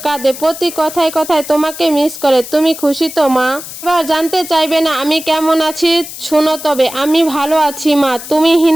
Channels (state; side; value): noise; left; hiss, 12 dB below the sound